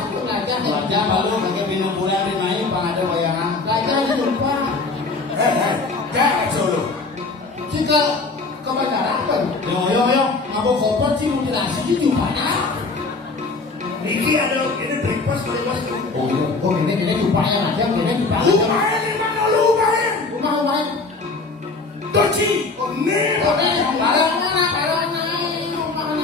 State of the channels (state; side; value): quieter; right; 3.8 dB